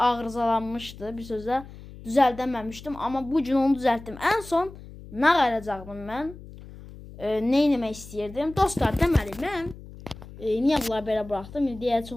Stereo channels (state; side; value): noise; left; hum, 16 dB below the sound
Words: Bir sözlə düzəldəməmişdim. Amma bugün onu düzəltdim. En son nə qalacaqdım mən? Ne etmək istəyirdim? Dostlar, deməli mən niyə bunları belə buraxdım? Deyə